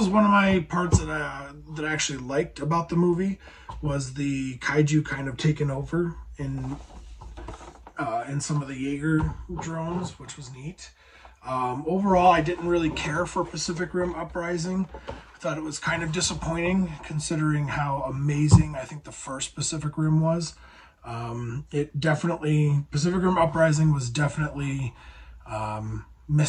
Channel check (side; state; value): both; identical; correlation 1.00